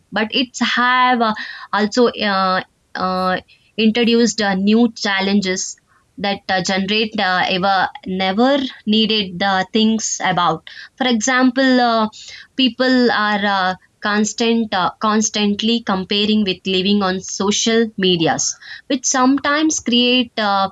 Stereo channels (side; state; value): both; identical; correlation 1.00